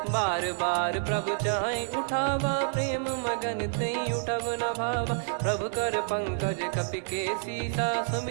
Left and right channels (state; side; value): silent; left; digital silence